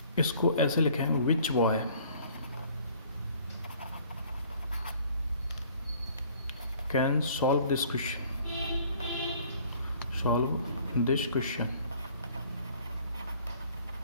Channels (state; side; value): inverted; both; correlation -0.55